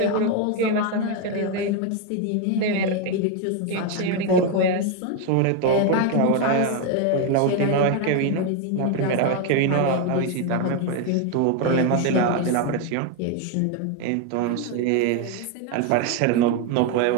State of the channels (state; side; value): different; both; correlation 0.02